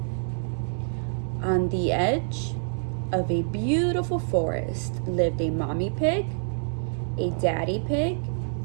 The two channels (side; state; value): left; silent; 58 dB below the other